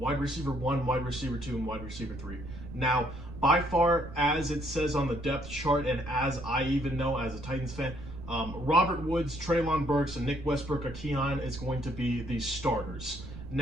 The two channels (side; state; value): right; noise; rumble, 13 dB below the sound